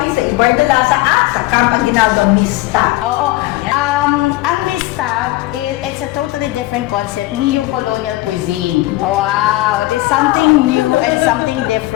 sa Ibardolaza at sa Camp Aguinaldo Mista. Oo. Ang Mista, it's a totally different concept. Neo-colonial cuisine. Wow. There's something new and something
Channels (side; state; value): right; quieter; 18.4 dB